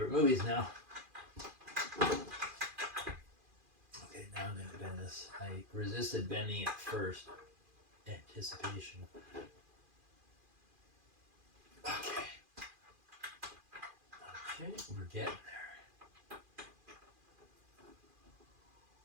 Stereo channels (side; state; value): left; late; 2.4 ms